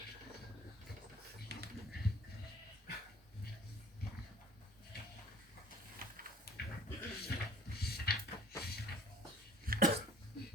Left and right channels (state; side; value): normal; both; correlation 0.51